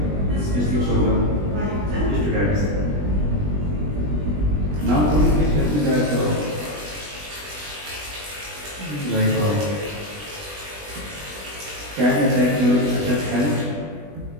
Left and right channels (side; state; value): left; late; 20 ms